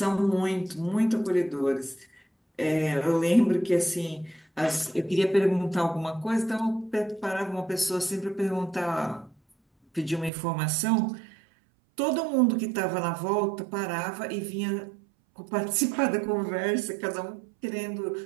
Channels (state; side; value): drops out; left; at 10.3 s